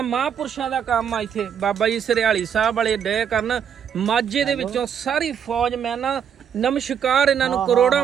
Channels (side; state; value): left; quieter; 8.1 dB